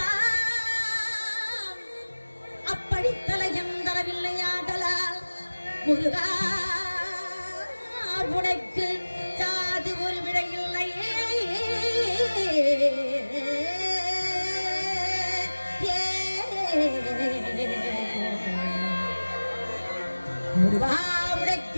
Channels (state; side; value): inverted; both; correlation -1.00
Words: நாடித்தான் அப்படித்தலை என்றவில்லையாடலால் முருகா உனக்கு ஜாதி ஒரு விடையில்லையே முருகா